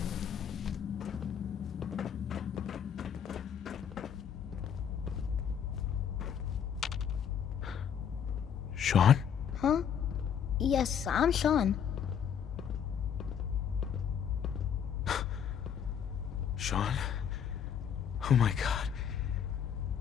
Sean? Huh? Yes, I'm Sean. Sean? Oh my god.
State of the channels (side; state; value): right; quieter; 8.2 dB